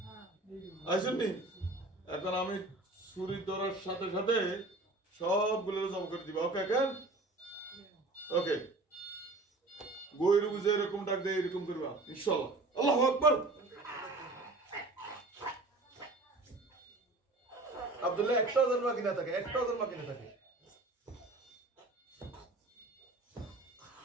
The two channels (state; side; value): quieter; left; 3.0 dB